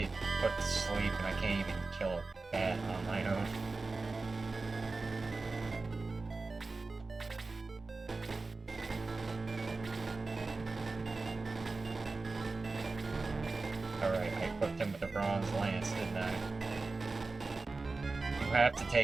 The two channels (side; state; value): left; quieter; 3.7 dB